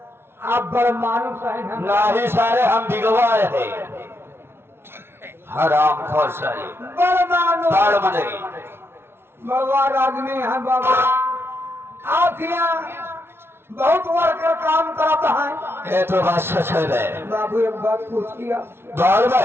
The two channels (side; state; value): left; late; 0.12 ms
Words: आप बड़ मानुस है नहीं सारे हम बिगवाए हैं हराम खोर सारे बड़ भगवान आदमी है बाबा। आप यहाँ बहुत वर्कर काम करता है। ये तो बात सच है बाबू। एक बात पूछिए बाल